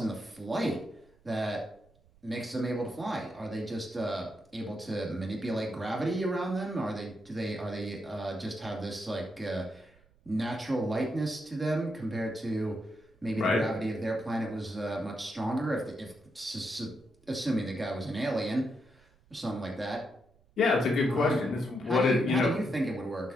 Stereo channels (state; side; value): noise; right; rumble, 30 dB below the sound